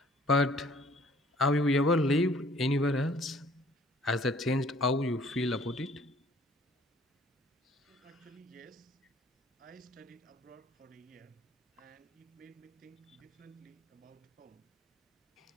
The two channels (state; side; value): normal; both; correlation 0.56